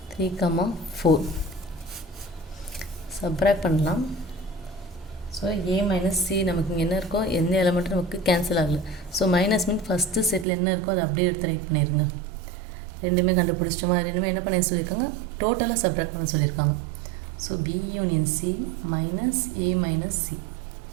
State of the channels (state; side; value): drops out; left; at 10.5 s